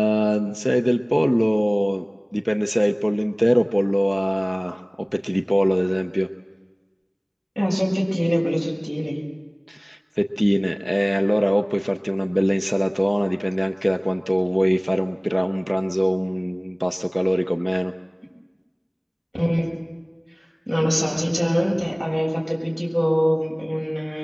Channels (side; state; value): both; identical; correlation 1.00